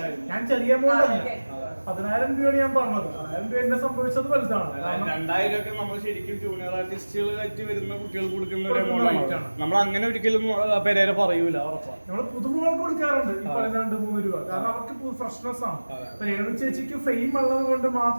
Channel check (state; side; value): inverted; both; correlation -1.00